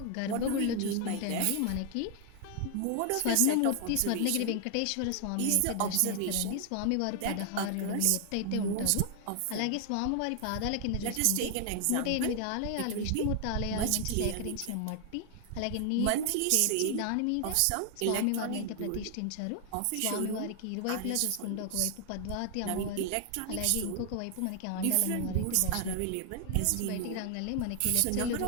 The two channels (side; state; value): both; different; correlation 0.00